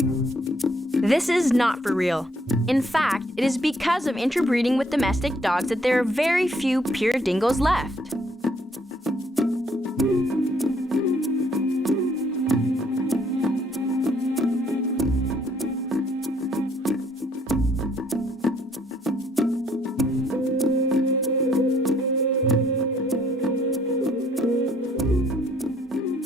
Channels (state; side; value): normal; both; correlation 0.66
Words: This is not for real. In fact, it is because of interbreeding with domestic dogs that there are very few pure dingoes left.